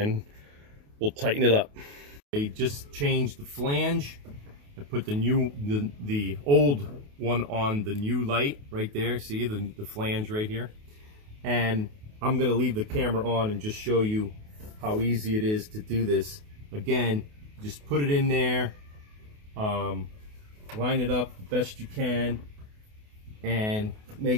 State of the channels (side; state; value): left; late; 28 ms